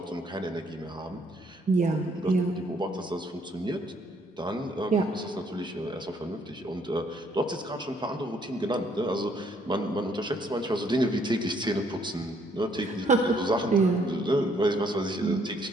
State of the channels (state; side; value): normal; both; correlation 0.67